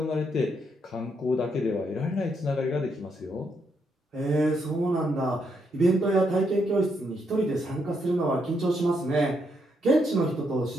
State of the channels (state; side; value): normal; both; correlation 0.77